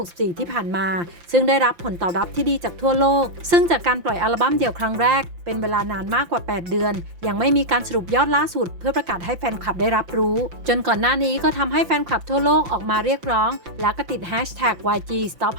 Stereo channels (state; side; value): late; left; 5.9 ms